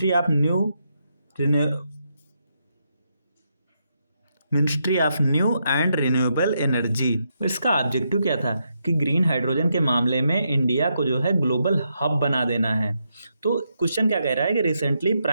of new and renewable energy. इसका ऑब्जेक्टिव क्या था कि ग्रीन हाइड्रोजन के मामले में इंडिया को जो है ग्लोबल हब बना देना है। तो क्वेश्चन क्या कह रहा है कि recently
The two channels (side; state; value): both; inverted; correlation -0.81